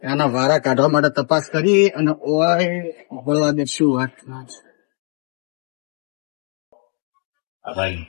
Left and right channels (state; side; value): quieter; right; 40.0 dB